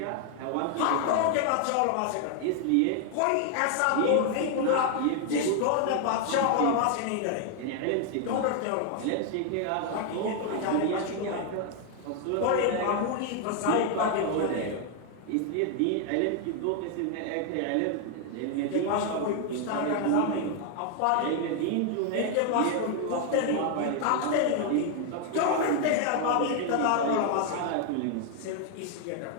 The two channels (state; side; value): different; both; correlation 0.00